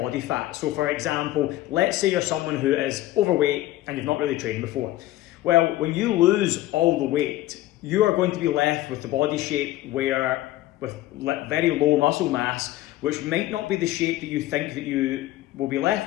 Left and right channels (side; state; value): right; quieter; 15.6 dB